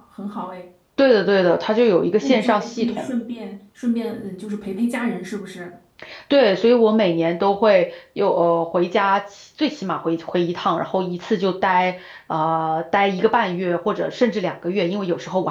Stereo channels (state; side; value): identical; both; correlation 1.00